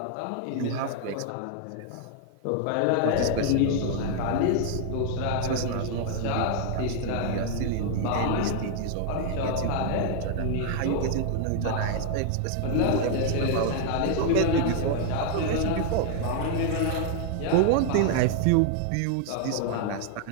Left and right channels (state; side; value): different; both; correlation 0.00